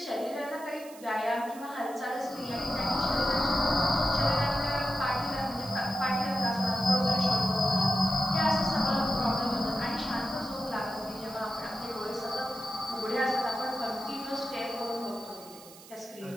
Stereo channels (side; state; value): right; noise; hiss, 20 dB below the sound